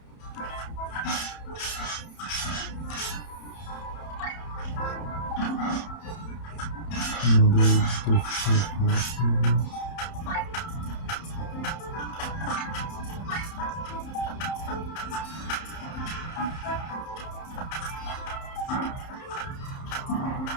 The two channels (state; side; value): late; right; 31 ms